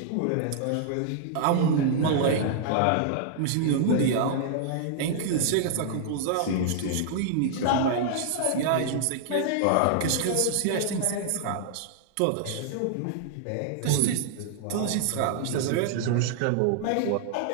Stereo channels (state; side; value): different; both; correlation -0.01